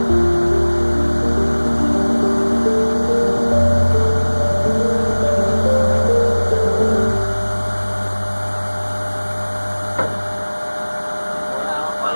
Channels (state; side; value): inverted; both; correlation -1.00